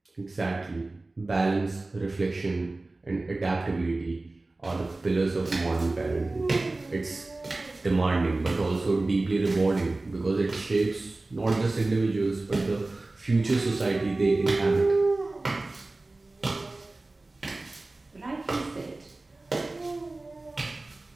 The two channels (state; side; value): quieter; left; 3.1 dB